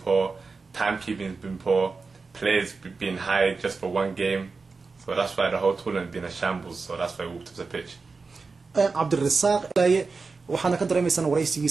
timekeeping's been poor, players been hired just for one game. So that's why the whole tournament been a shambles. So that's why we walked off the pitch. Abdirisaq waxaana ka dareemaysan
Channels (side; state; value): left; quieter; 4.3 dB